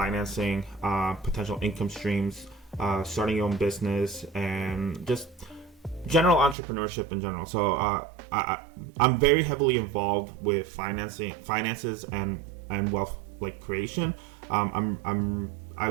potential income streams, starting your own business, and just general entrepreneurship in general. So I'm very heavily involved with finances, and wealth creation.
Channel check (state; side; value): drops out; left; at 6.6 s